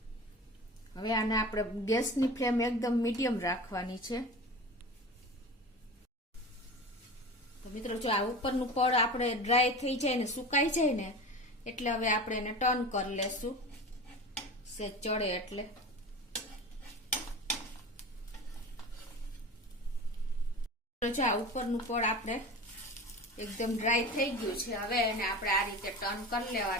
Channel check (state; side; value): normal; both; correlation 0.32